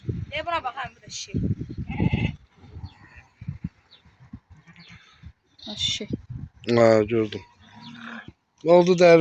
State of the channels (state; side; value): identical; both; correlation 1.00